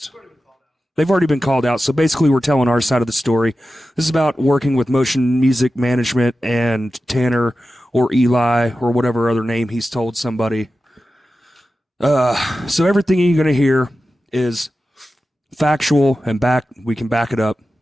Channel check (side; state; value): both; normal; correlation 0.93